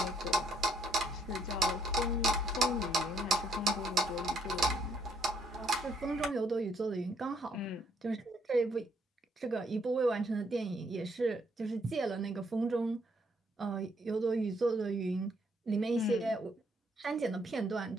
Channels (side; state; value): both; normal; correlation 0.69